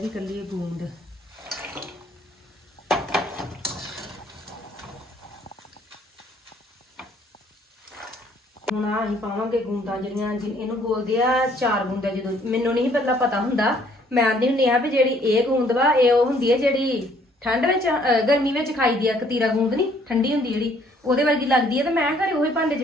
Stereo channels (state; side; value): normal; both; correlation 0.62